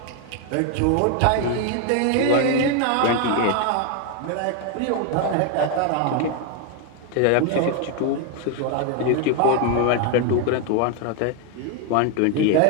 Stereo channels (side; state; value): both; different; correlation 0.01